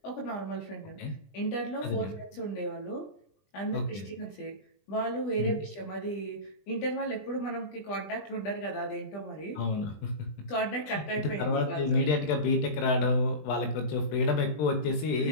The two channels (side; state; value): right; late; 20 ms